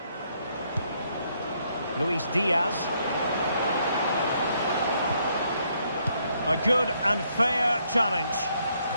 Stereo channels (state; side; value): inverted; both; correlation -0.72